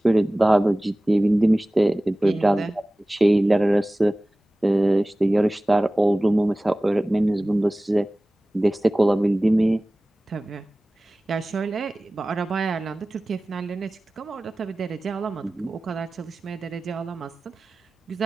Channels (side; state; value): both; normal; correlation 0.98